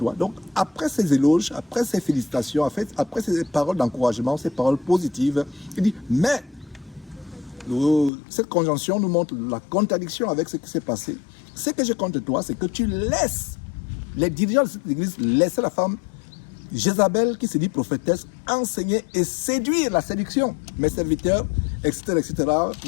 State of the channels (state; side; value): drops out; right; at 8.1 s